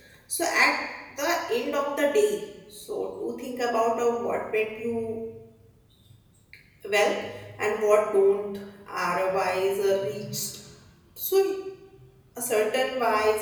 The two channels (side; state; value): both; identical; correlation 1.00